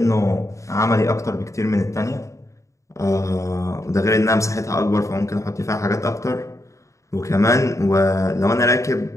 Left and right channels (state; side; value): late; right; 0.15 ms